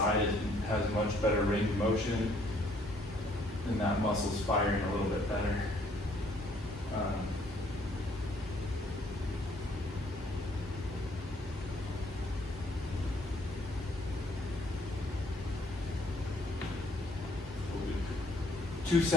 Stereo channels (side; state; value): both; normal; correlation 0.63